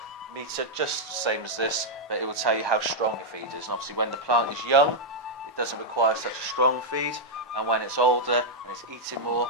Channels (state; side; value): normal; both; correlation -0.03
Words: meter just the same as this, but it will tell you how strong your feed is. And obviously when the plant is young, it doesn't require such a strong feed, and when it's older and it's eating more,